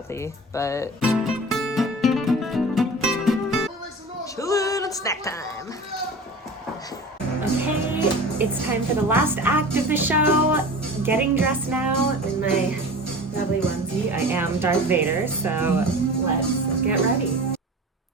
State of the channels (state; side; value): normal; both; correlation 0.36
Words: but chillin' and snack time. Okay, it's time for the last act of the show. Getting dressed now in my lovely onesie. I am Darth Vader, so let's get ready.